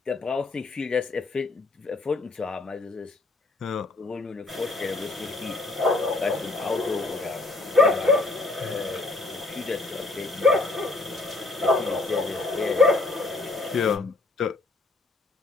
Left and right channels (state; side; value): quieter; right; 3.3 dB